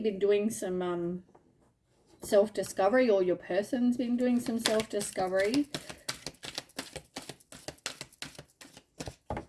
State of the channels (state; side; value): identical; both; correlation 1.00